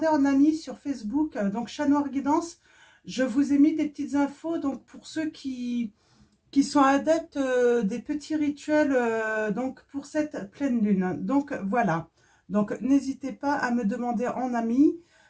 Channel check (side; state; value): both; identical; correlation 1.00